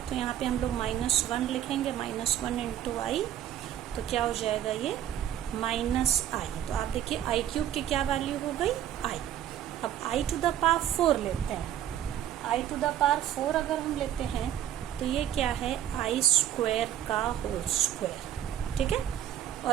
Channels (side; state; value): left; quieter; 11.1 dB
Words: तो यहाँ पे हम लोग माइनस वन लिखेंगे, माइनस वन इंटू आई। तो क्या हो जाएगा ये? Minus i. तो आप देखिए आई क्यूब की क्या वैल्यू हो गई? आई। अब आई टू द पावर फोर लेते हैं। I to the power four अगर हम लेते हैं तो ये क्या है? आई स्क्वायर का होल स्क्वायर, ठीक है।